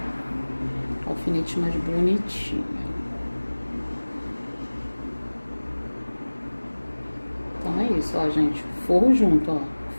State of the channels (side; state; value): both; inverted; correlation -1.00